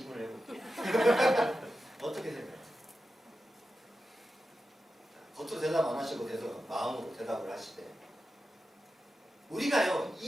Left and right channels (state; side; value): normal; both; correlation 0.91